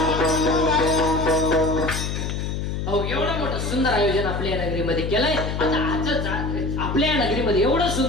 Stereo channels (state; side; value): noise; left; hum, 3 dB below the sound